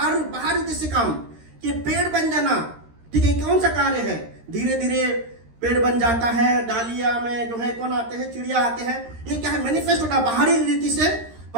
जैसे काम, ये पेड़ बन जाना। ठीक है, कौन सा कार्य है, धीरे धीरे पेड़ बन जाता है, डालिया में जो है कौन आते हैं, चिड़िया आते हैं। ये क्या है, मैनिफेस्ट होना, बाहरी रीति से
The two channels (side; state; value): left; late; 13 ms